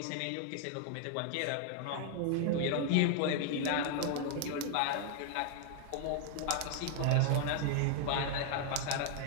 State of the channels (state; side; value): different; both; correlation 0.00